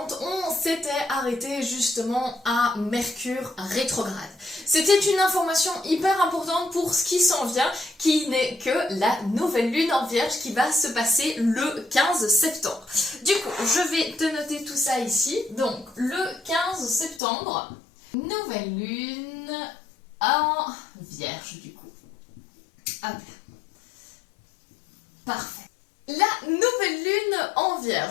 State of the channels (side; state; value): right; drops out; at 17.2 s